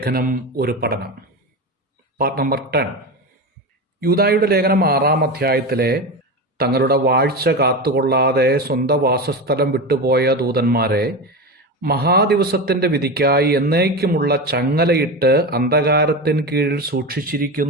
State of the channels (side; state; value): both; normal; correlation 0.21